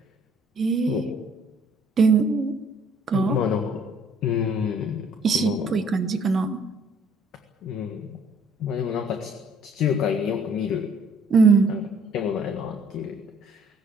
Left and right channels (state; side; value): normal; both; correlation 0.59